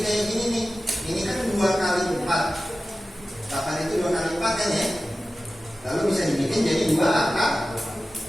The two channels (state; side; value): normal; both; correlation 0.95